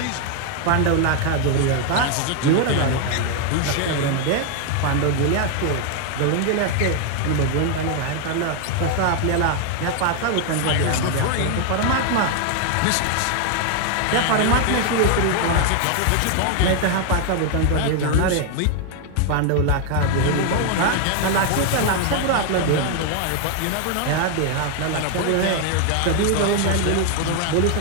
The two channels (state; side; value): different; both; correlation 0.00